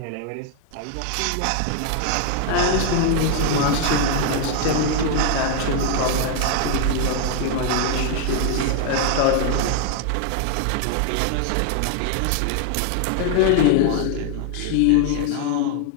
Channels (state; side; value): different; both; correlation 0.00